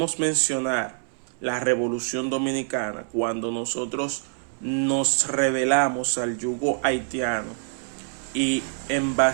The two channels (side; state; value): left; silent; 61 dB below the other